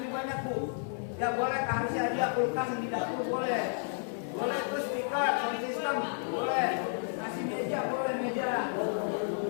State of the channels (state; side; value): silent; right; 56 dB below the other